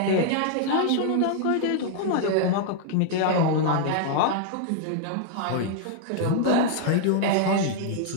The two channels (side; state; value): both; different; correlation -0.01